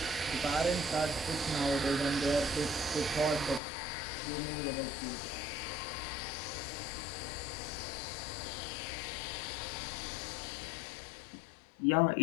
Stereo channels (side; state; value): right; drops out; at 3.6 s